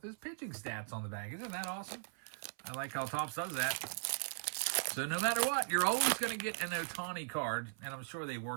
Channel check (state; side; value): silent; left; 52 dB below the other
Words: his pitching stats on the back. Isn't that awesome? I like how TOPPS does that. So no matter what, you're always going to get an Ohtani card, and I'm sure they